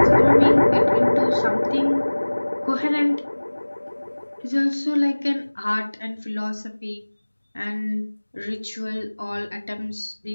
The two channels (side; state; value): both; inverted; correlation -1.00